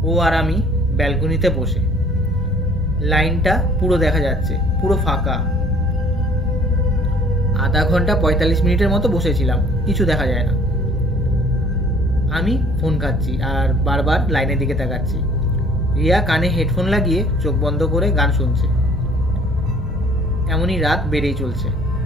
ও আর আমি ব্যালকনিতে বসে। লাইনটা পুরো দেখা যাচ্ছে, পুরো ফাঁকা। আধা ঘন্টা 45 মিনিটের মতো বসেছিলাম, কিছু দেখা যায় না। আমি ফোন ঘাঁটছি আর বারবার লাইনের দিকে তাকাচ্ছি। রিয়া কানে হেডফোন লাগিয়ে চোখ বন্ধ করে গান শুনছে। এমনই রাত বেড়েই চলছে।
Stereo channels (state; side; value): normal; both; correlation 0.55